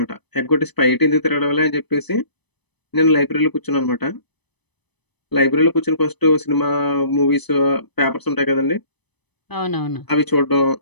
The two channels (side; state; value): right; late; 0.99 ms